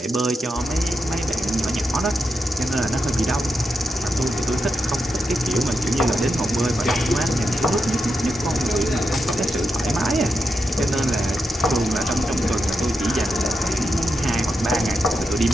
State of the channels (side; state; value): both; normal; correlation 0.86